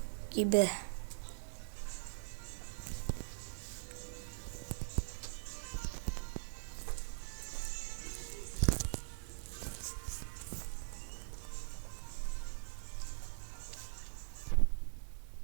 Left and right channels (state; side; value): silent; left; digital silence